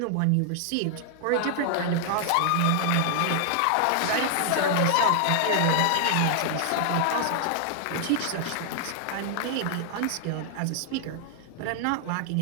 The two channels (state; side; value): different; both; correlation -0.01